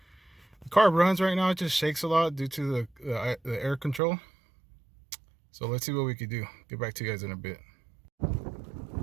The car runs right now, it just shakes a lot due to the air control. So let's see what we can do. Get back to you guys in a bit.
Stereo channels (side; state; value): left; drops out; at 4.0 s